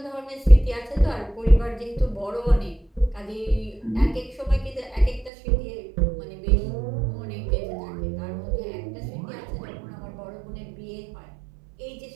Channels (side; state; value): left; drops out; at 5.3 s